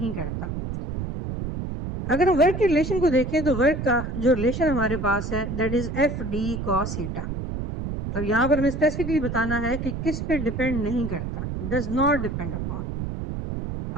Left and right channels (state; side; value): noise; right; rumble, 5 dB below the sound